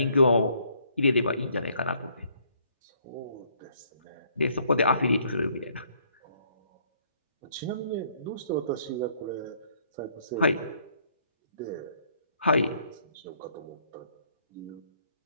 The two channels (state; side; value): inverted; both; correlation -0.66